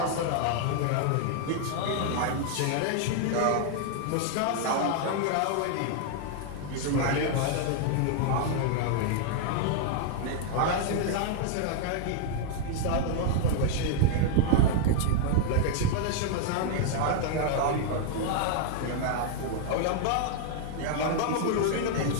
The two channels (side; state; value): both; different; correlation 0.00